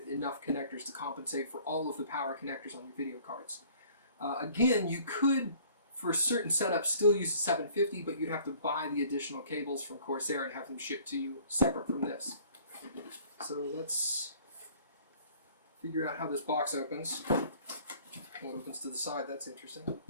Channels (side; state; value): both; inverted; correlation -0.54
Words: enough connectors to compensate for all of the power connectors on your video cards. Again, you could, for certain setups, still use a 750, but you'd have to buy the additional cables from Corsair and have them shipped to you separate from this. So let's figure out how this box opens. Well, it opens to the side, that's interesting.